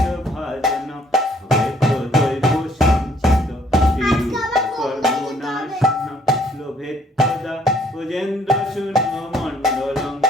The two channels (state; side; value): normal; both; correlation 0.63